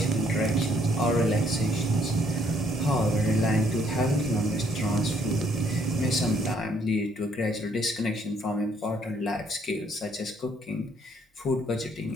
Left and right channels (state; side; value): normal; both; correlation 0.66